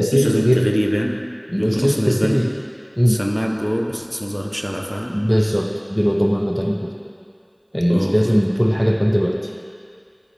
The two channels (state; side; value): identical; both; correlation 1.00